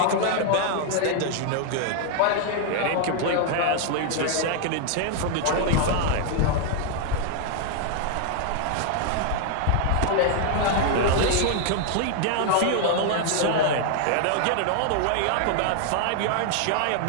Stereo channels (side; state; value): both; different; correlation 0.00